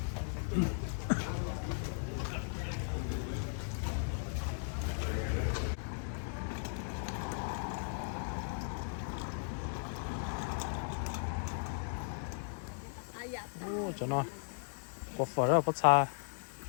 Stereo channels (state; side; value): silent; right; digital silence